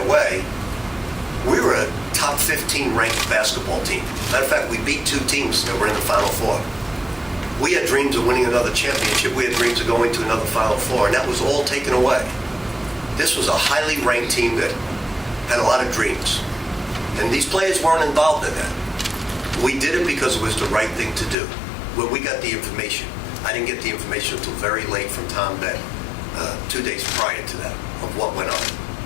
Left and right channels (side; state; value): right; drops out; at 21.4 s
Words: away, we were a top 15 ranked basketball team. Matter of fact, we beat 2 teams that were in the Final Four. We had dreams of winning another championship. We had dreams of going to another Final Four, and that was all taken away. This was a highly ranked team that had a lot of dreams. And these players weren't involved in that. We did it because it was the right thing to do. When we got the information, I didn't get the information until very late from Tom Beck, 2 days prior to that, of what went on.